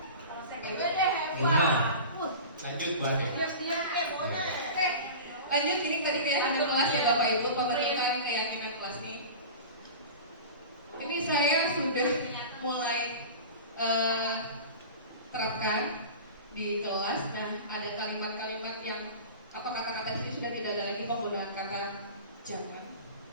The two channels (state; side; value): inverted; both; correlation -0.34